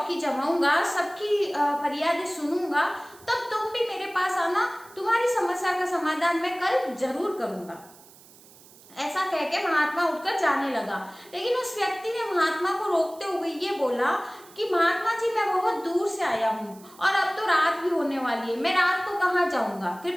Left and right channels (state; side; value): noise; right; hiss, 23 dB below the sound